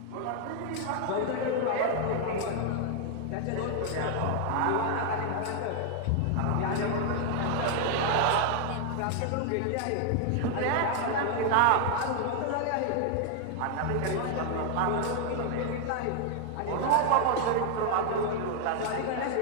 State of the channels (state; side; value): different; both; correlation 0.00